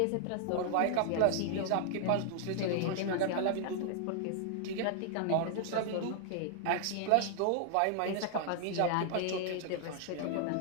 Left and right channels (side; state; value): both; different; correlation 0.00